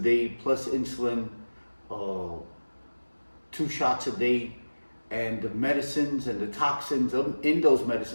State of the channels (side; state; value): both; inverted; correlation -1.00